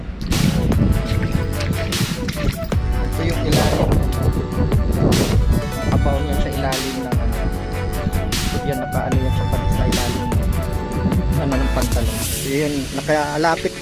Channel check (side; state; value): both; identical; correlation 1.00